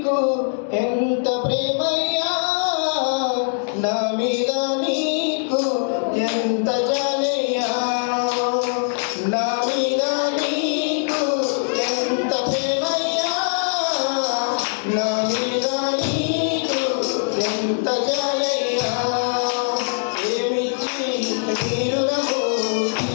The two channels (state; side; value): silent; right; digital silence